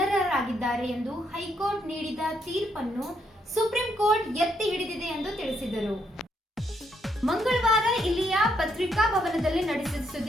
ಎಂದು ಹೈಕೋರ್ಟ್ ನೀಡಿದ ತೀರ್ಪನ್ನು ಸುಪ್ರೀಂ ಕೋರ್ಟ್ ಎತ್ತಿ ಹಿಡಿದಿದೆ ಎಂದು ತಿಳಿಸಿದರು. ಮಂಗಳವಾರ ಇಲ್ಲಿಯ ಪತ್ರಿಕಾ ಭವನದಲ್ಲಿ ನಡೆಸಿದ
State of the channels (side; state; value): both; normal; correlation 0.75